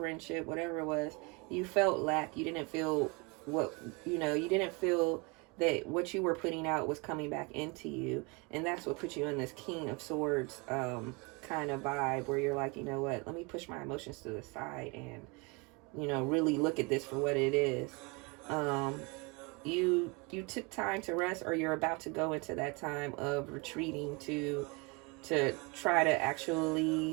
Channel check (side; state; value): left; quieter; 28.7 dB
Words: whatever it was, you felt lack. You didn't feel you didn't feel that what you were putting out was coming back into you. And that's what put you in this King of Swords kind of vibe, where you're like, you know what, let me push my emotions to the side and, really look at this for what it is. You took time to rest, or you're about to go into that time of retreating to try to